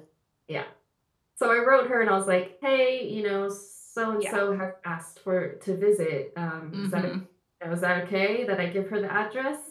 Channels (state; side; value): identical; both; correlation 1.00